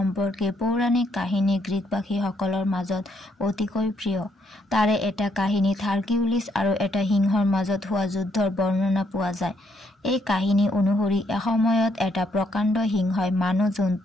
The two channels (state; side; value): normal; both; correlation 0.73